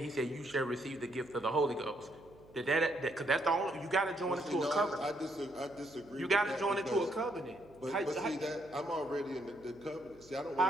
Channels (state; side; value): noise; right; hum, 25 dB below the sound